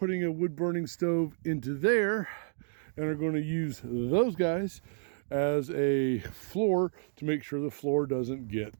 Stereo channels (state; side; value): silent; left; digital silence